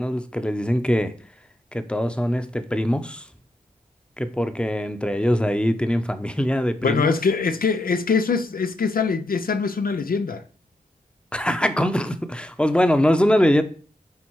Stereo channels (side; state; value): both; normal; correlation 0.83